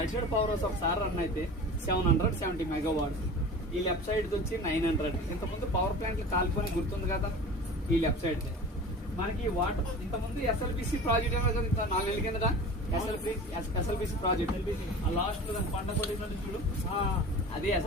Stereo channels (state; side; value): normal; both; correlation 0.37